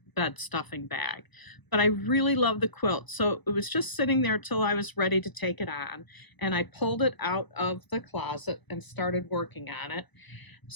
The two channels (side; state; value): right; late; 1.0 ms